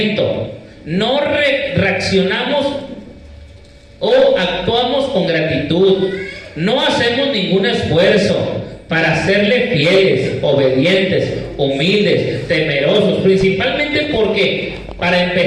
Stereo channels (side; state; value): both; identical; correlation 1.00